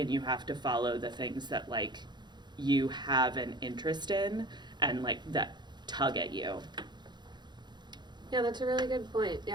you have to follow the things that like you have an interest in and like that tug at you. Yeah, that's a really good point.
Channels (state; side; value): late; left; 0.21 ms